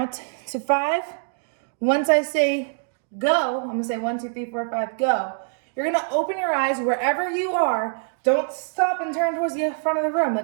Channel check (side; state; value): left; silent; digital silence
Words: to 5. Once I say go, I'm going to say 1, 2, 3, 4, 5, go. You're going to open your eyes wherever you are. Don't stop and turn towards the front of the room.